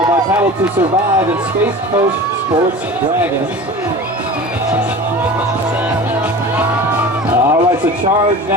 by Paddle to Survive and Space Coast Sports Dragons. All right, so C.H.A.R.G.E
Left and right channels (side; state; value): both; normal; correlation 0.36